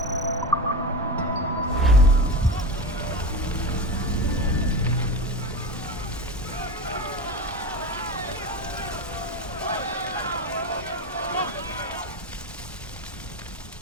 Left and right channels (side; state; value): both; normal; correlation 0.23